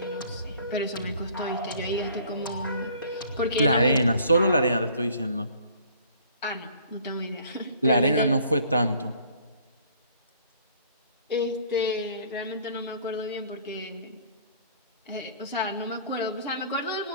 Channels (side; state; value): both; inverted; correlation -0.55